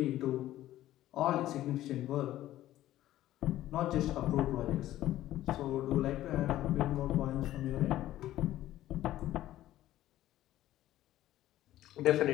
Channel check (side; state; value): right; quieter; 14.2 dB